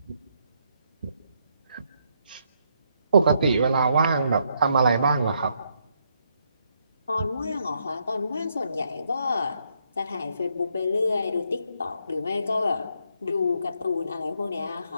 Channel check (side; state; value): both; inverted; correlation -0.75